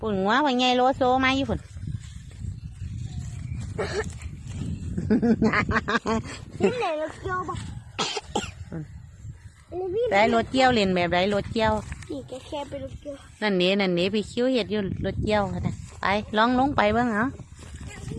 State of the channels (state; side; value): identical; both; correlation 1.00